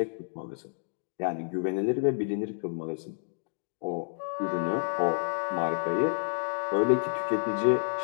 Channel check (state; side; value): silent; right; digital silence